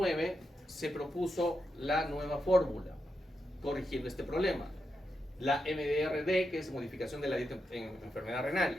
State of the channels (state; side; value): normal; both; correlation 0.85